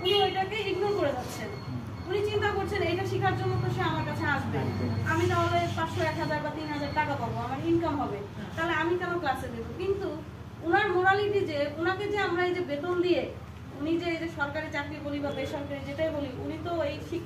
উনি ওইটাকে ইগনোর করে যাচ্ছেন। উনি চিন্তা করছেন এইটা শেখার জন্য তো সে আমার কাছে আসবে, আমি তাহলে 500, 1000 বা 3000 টাকা পাবো, আমার ইনকাম হবে, তাহলে আমি কেন ক্লাসে দেবো? কিন্তু উনার মোরালিটি যে উনাকে যে আমরা এই যে বেতন দিয়ে, উনি যে এই যে সরকারি চাকরি বলি বা বেসরকারি যেটাই বলি, উনি তো এই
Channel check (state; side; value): identical; both; correlation 1.00